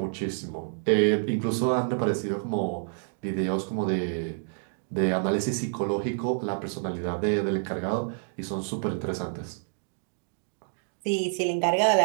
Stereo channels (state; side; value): silent; left; digital silence